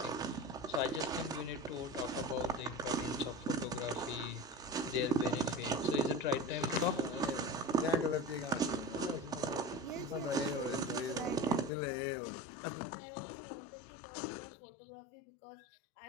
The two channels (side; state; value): right; drops out; at 11.7 s